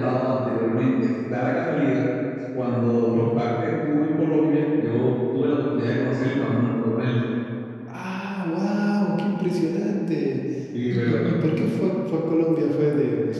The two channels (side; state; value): both; identical; correlation 1.00